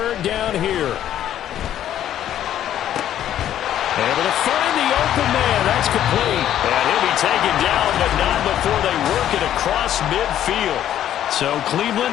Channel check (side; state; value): right; quieter; 11.3 dB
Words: down here. Able to find the open man. That's complete. And he'll be taken down, but not before they work it across midfield. So